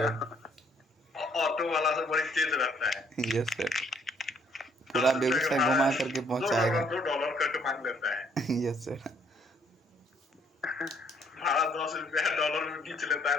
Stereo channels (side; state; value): both; normal; correlation 0.66